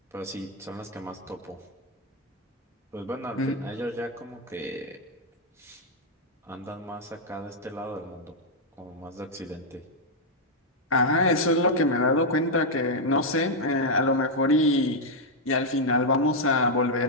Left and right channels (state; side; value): normal; both; correlation -0.02